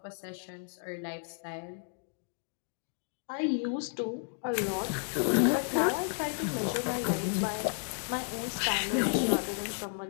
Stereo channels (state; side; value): silent; right; digital silence